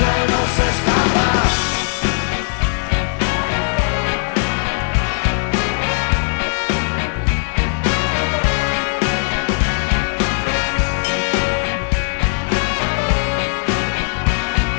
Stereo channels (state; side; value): silent; right; digital silence